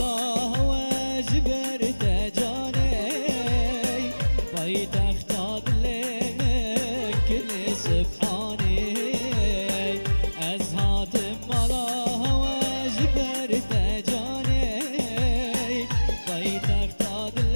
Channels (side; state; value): both; inverted; correlation -1.00